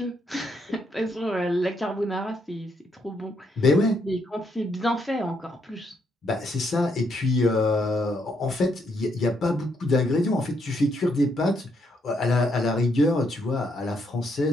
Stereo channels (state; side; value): normal; both; correlation 0.75